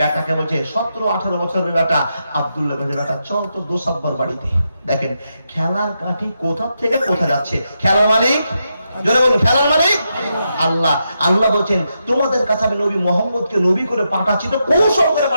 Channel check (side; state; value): both; inverted; correlation -0.84